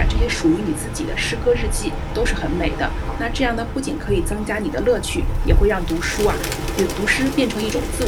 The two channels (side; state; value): both; identical; correlation 1.00